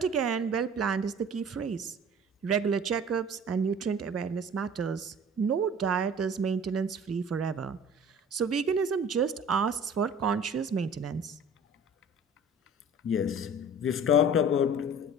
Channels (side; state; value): both; normal; correlation 0.44